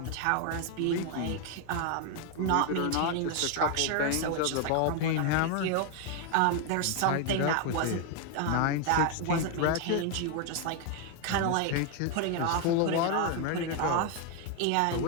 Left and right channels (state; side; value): different; both; correlation 0.01